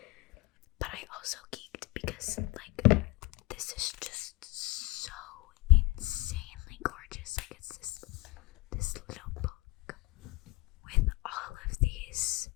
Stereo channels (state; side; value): quieter; right; 22.2 dB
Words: But I also geeked because like this is just so insanely gorgeous. Like it's this little book with all of these